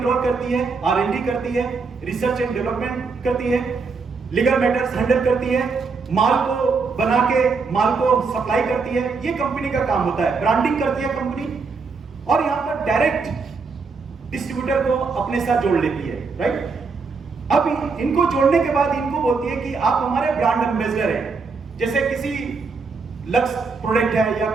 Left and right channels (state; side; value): quieter; left; 4.7 dB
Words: करती है, R&D करती है, रिसर्च एंड डेवलपमेंट करती है, लीगल मैटर्स हैंडल करती है, माल को बना के माल को सप्लाई करती है। ये कंपनी का काम होता है। ब्रांडिंग करती है कंपनी, और यहाँ पर डायरेक्ट डिस्ट्रीब्यूटर को अपने साथ जोड़ लेती है, राइट। अब इनको जोड़ने के बाद इनको बोलती है कि आप हमारे ब्रांड एम्बेसडर हैं। जैसे किसी लक्स प्रोडक्ट है या